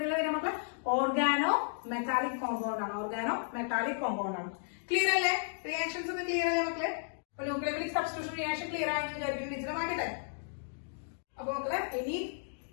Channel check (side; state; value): right; silent; digital silence